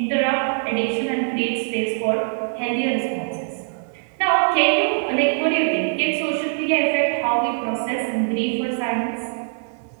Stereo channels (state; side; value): silent; left; digital silence